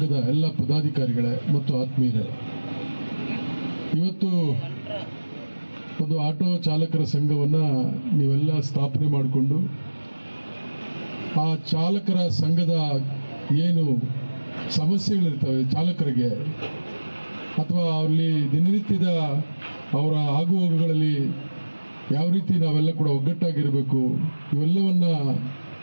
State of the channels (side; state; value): both; inverted; correlation -1.00